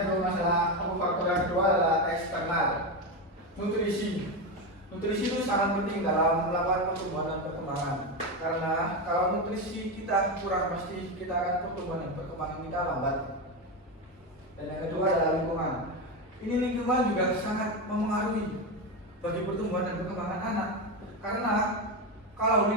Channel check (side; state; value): both; normal; correlation 0.14